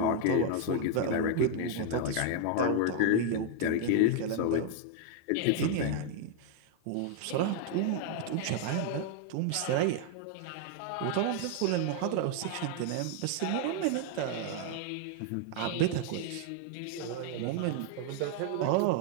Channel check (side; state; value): both; different; correlation 0.00